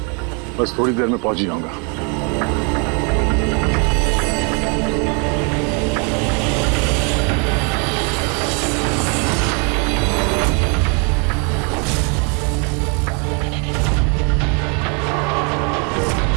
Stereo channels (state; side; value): quieter; left; 35.5 dB